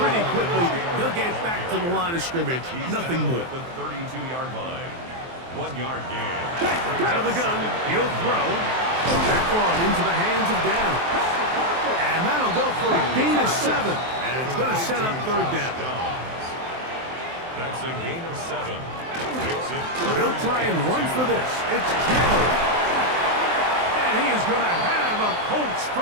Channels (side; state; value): left; late; 23 ms